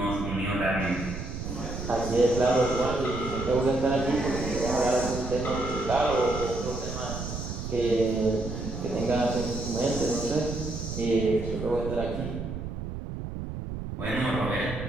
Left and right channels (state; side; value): noise; right; rumble, 6 dB below the sound